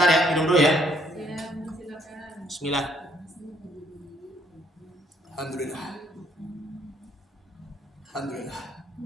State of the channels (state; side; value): normal; both; correlation 0.67